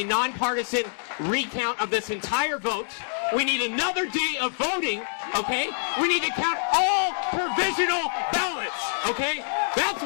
nonpartisan recount of this entire vote. We need another day of voting, okay? We need to count all provisional ballots, okay? That's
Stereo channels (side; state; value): right; silent; digital silence